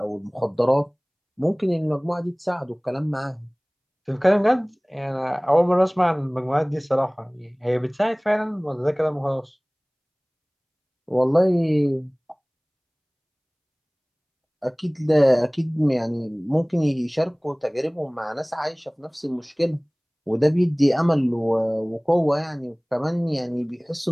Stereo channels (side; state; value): both; identical; correlation 1.00